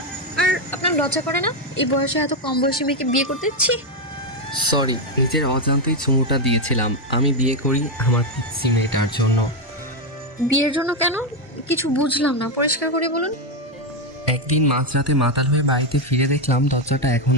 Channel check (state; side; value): normal; both; correlation 0.05